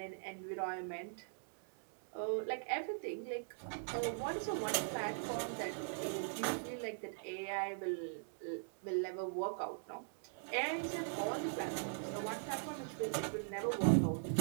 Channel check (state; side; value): silent; left; digital silence